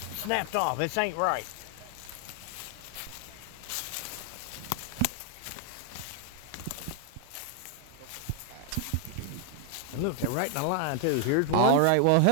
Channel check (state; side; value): different; both; correlation 0.00